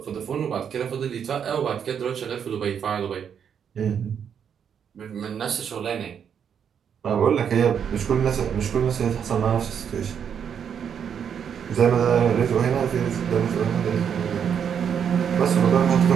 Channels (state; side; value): quieter; left; 7.9 dB